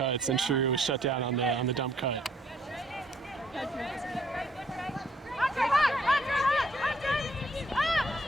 and Shrew was shut down on the dump cut.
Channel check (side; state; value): both; normal; correlation 0.66